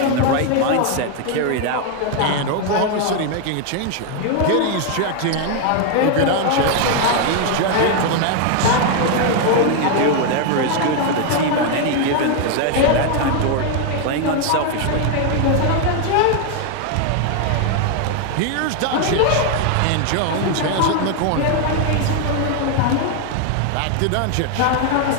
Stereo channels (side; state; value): both; different; correlation 0.01